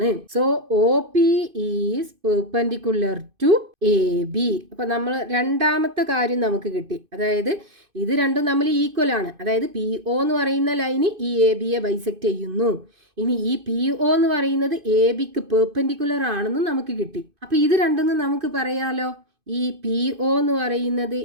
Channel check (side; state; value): left; late; 2.5 ms